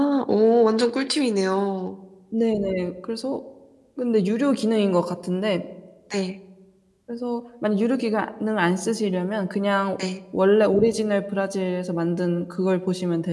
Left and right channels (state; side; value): identical; both; correlation 1.00